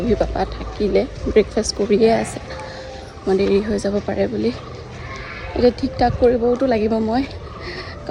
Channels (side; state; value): both; identical; correlation 1.00